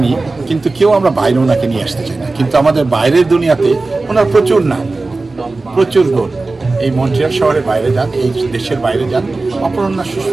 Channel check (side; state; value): left; quieter; 3.4 dB